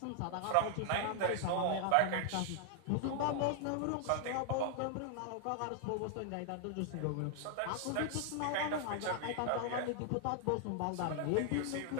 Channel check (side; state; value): both; different; correlation 0.00